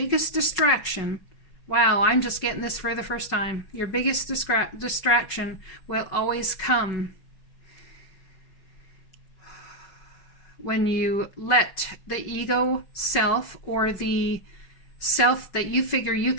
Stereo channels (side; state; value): right; late; 5.3 ms